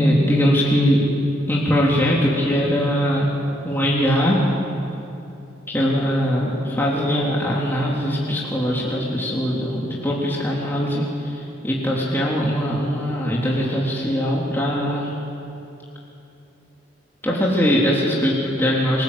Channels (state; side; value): normal; both; correlation 0.73